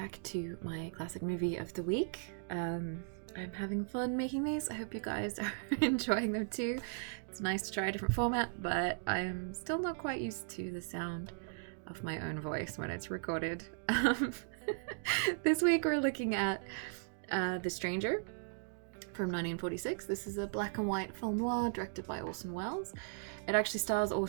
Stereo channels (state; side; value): silent; left; digital silence